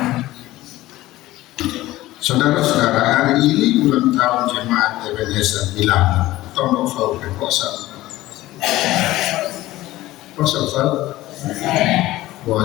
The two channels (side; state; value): right; quieter; 16.7 dB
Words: Saudara-saudara, hari ini ulang tahun jemaat Ebenezer bilang tolong fau kekuasaan.